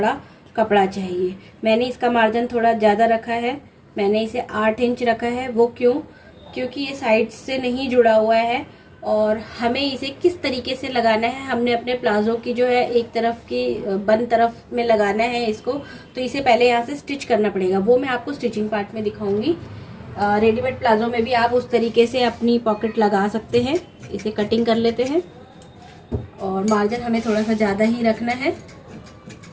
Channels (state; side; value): identical; both; correlation 1.00